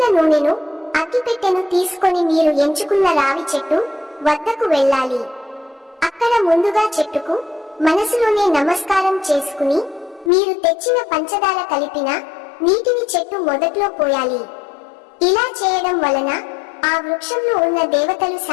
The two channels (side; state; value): right; drops out; at 10.3 s